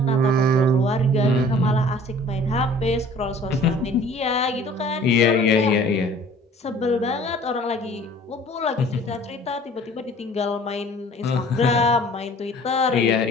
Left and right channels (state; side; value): normal; both; correlation 0.50